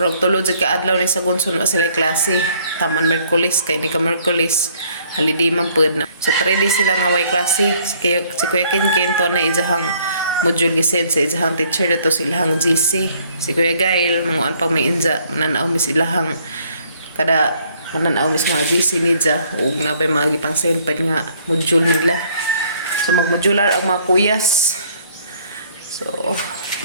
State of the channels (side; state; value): both; inverted; correlation -0.63